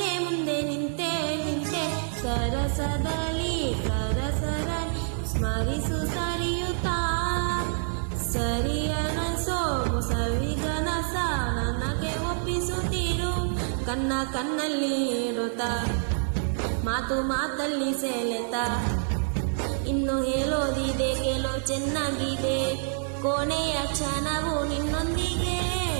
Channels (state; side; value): silent; left; 60 dB below the other